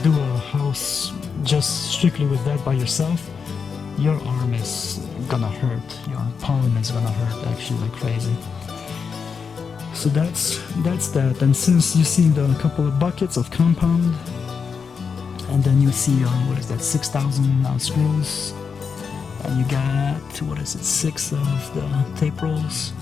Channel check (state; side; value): quieter; right; 5.8 dB